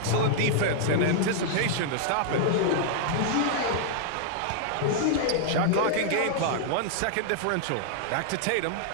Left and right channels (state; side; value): different; both; correlation -0.01